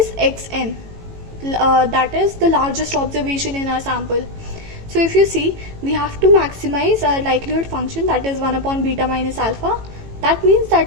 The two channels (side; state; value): left; late; 18 ms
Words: xn, that is the largest observation in our sample. So if you see, we have to maximize our likelihood function, that is 1 upon beta minus alpha. That means